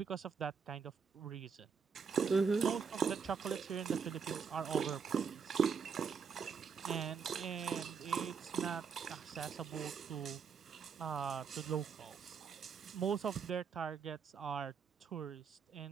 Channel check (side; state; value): left; quieter; 6.1 dB